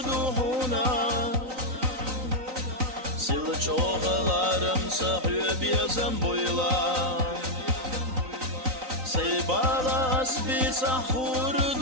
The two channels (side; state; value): left; late; 3.9 ms